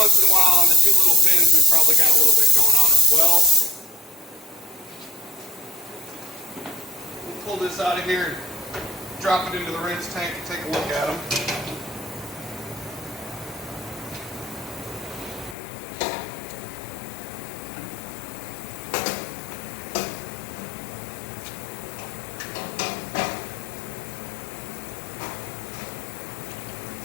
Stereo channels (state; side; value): drops out; right; at 15.6 s